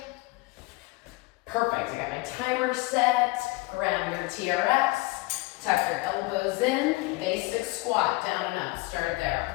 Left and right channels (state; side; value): quieter; right; 22.8 dB